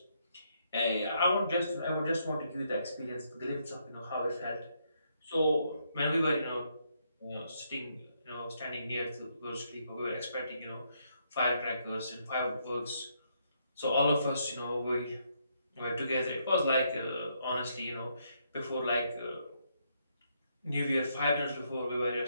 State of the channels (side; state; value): both; inverted; correlation -0.75